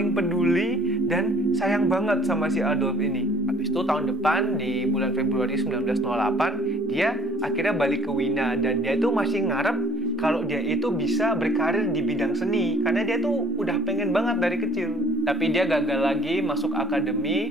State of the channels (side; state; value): both; normal; correlation 0.55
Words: peduli dan sayang banget sama si Adolf ini. Habis itu tahun depan di bulan Februari 1908 dia akhirnya balik ke Wina, dan dia itu masih ngarep kalau dia itu bisa berkarir di bidang seni karena dia tuh udah pengen banget dari kecil. Tapi dia gagal lagi masuk